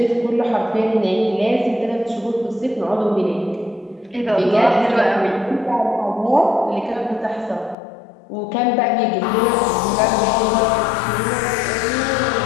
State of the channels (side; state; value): right; drops out; at 7.8 s